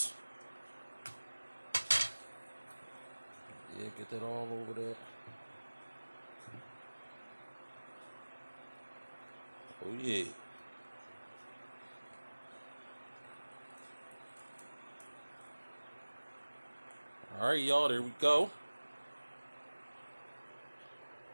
Yeah, get that all over there. Oh yeah. Alright, y'all, there we go.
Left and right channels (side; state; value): both; inverted; correlation -1.00